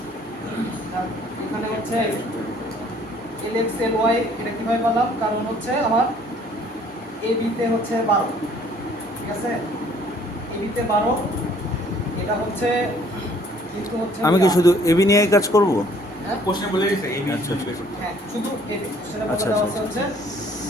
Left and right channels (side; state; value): both; normal; correlation 0.59